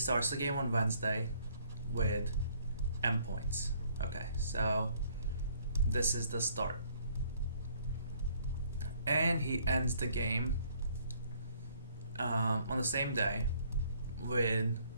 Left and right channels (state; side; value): inverted; both; correlation -0.63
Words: the game on Wednesday with M points. Okay, so this is the start. And he ends the game on the same day with